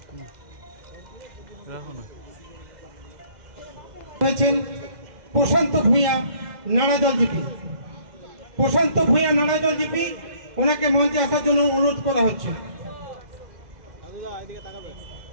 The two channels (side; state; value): left; late; 2.0 ms